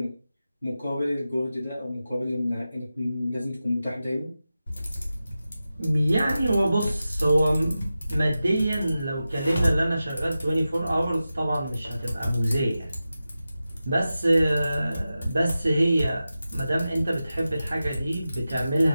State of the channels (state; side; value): inverted; both; correlation -0.93